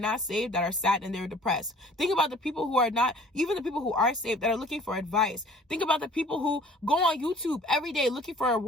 saved that are sad and they're depressed. Think about the people who are not, even the people who are saved that are looking for advice. Think about the people who go on YouTube every day looking for a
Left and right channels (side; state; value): both; normal; correlation 0.51